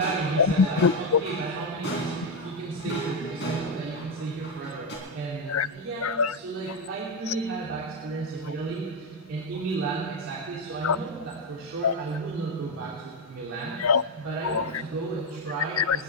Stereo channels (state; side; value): normal; both; correlation 0.06